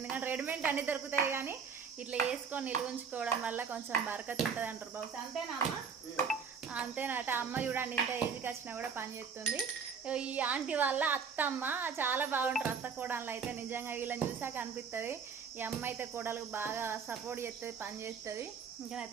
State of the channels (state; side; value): quieter; left; 6.1 dB